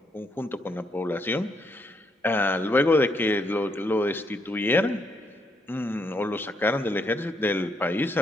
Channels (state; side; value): normal; both; correlation 0.75